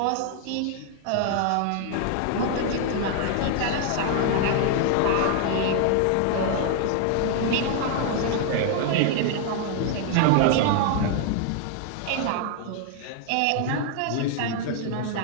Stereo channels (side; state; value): both; different; correlation 0.00